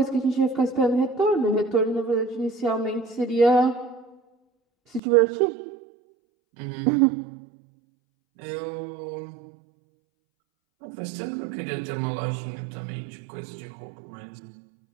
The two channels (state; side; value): drops out; left; at 5.0 s